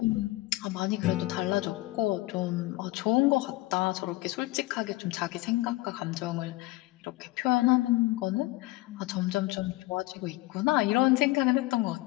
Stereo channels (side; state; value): right; quieter; 19.8 dB